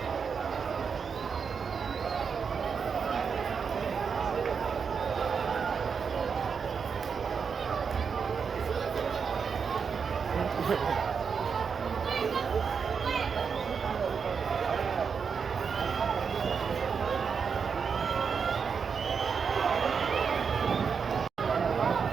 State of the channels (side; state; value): left; quieter; 6.1 dB